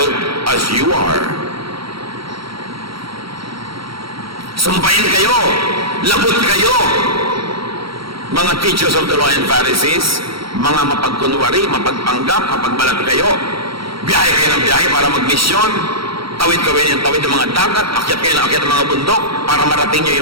as you are. Sumpayin kayo, labot kayo, mga teachers of the law and Pharisees, mga mapagkunwari, mapagpanggap, mapagbalat kayo. Biyahe kayo ng biyahe para magmisyon. Tawid kayo ng tawid ng mga dagat, akyat kayo ng akyat ng mga bundok para marating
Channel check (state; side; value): late; left; 0.75 ms